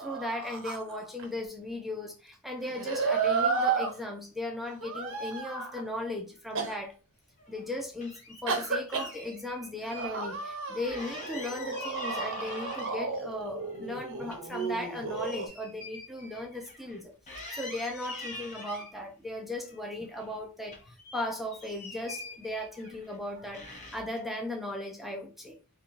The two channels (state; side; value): normal; both; correlation 0.14